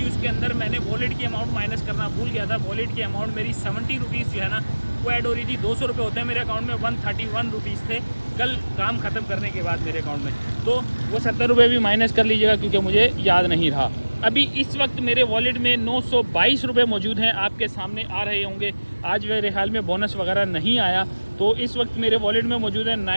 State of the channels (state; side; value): inverted; both; correlation -1.00